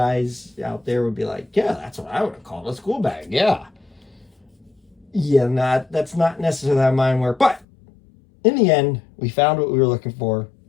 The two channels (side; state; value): right; drops out; at 7.7 s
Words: out there would be like, yeah, that's what I would have called a school bag. Yeah. Yeah, that's not necessarily how mine work. But in the end, we found what we were looking for.